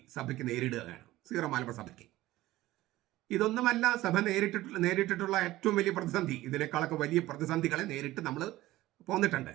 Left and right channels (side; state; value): left; quieter; 16.8 dB